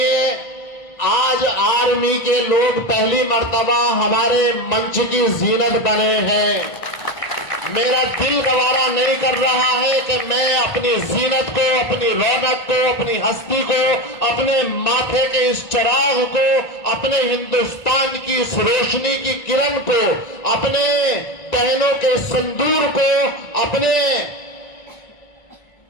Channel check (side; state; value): right; late; 1.9 ms